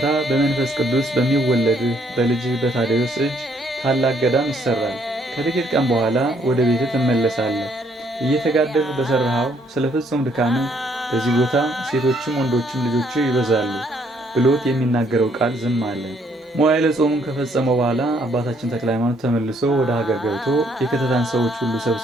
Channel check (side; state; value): both; normal; correlation 0.68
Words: በመንፈስ ቅዱስ በሚወለድህ በልጅህ በታዴዎስ እጅ ታላቅ ገዳም ይሰራል። ከጥቂት ቀን በኋላ ወደ ቤትህ ትመለሳለህ። እየተጋደልህ በሰራኸው ስለ ፍጹም ድካምህ በዚህ ቦታ ሴቶችም ወንዶችም ልጆች ይበዛሉ ብሎት የሚናገረው ቃል ዝም አለ። መዋዕለ ጾሙን ከፈጸመው በኋላ አባታችን ተክለ ሃይማኖት ተመልሶ ወደ ሀገር ገብቶ የከተታን ሰዎች ሁሉ